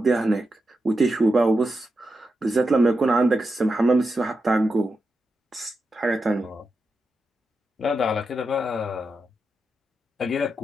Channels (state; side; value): normal; both; correlation 0.88